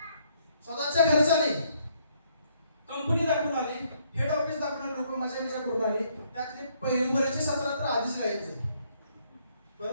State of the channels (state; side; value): inverted; both; correlation -0.68